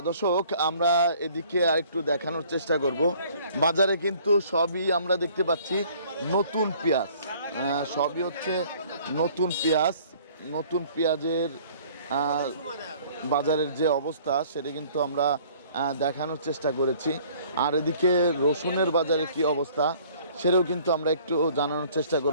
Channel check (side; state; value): both; inverted; correlation -0.55